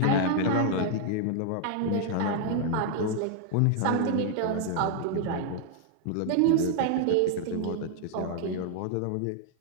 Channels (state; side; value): different; both; correlation -0.01